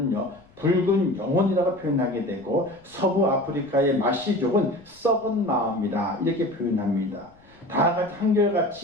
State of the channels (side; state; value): left; noise; rumble, 29 dB below the sound